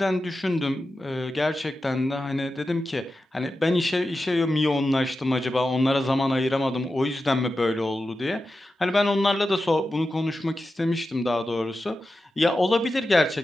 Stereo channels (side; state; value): both; normal; correlation 0.92